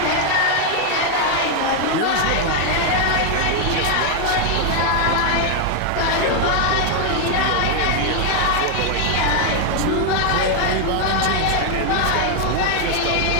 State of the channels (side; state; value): both; different; correlation 0.00